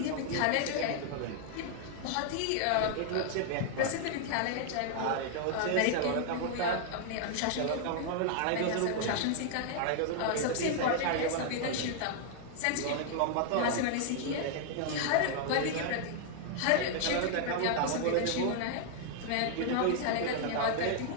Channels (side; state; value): both; different; correlation -0.01